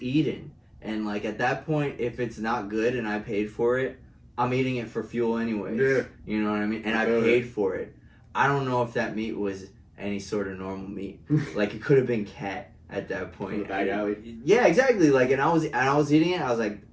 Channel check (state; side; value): identical; both; correlation 1.00